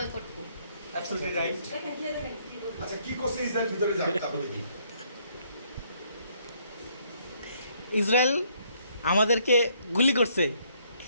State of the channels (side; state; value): both; inverted; correlation -0.68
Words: co absolutely right আচ্ছা কি করছে ইসরায়েল ভিতরে যাক তারপরে দেখি ইসরায়েল আমাদেরকে গুলি করছে,